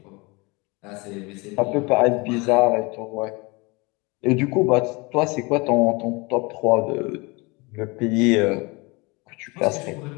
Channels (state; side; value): quieter; right; 26.6 dB